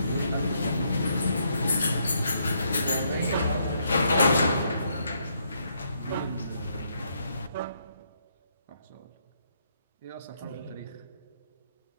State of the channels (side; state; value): both; inverted; correlation -0.74